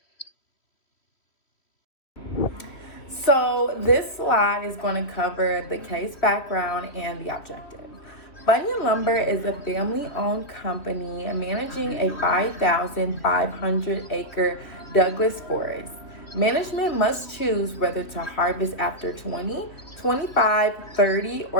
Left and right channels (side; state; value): right; late; 3.0 ms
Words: So this slide is going to cover the case background and the objective. Bunyan Lumber is a family-owned company managing a 5,500-acre Douglas forest. Management must choose whether to harvest after 20, 25, 30,